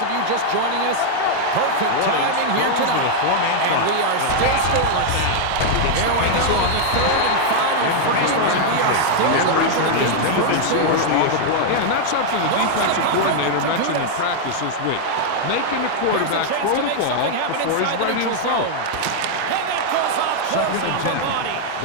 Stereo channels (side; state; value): both; different; correlation 0.00